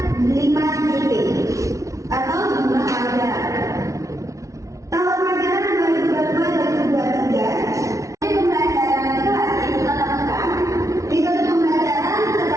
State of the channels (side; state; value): left; late; 0.15 ms